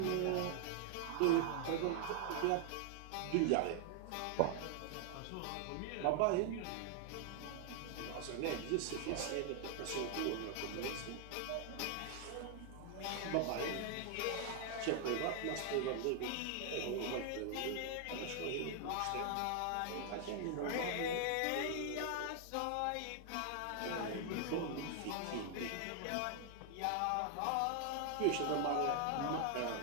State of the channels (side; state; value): both; different; correlation 0.00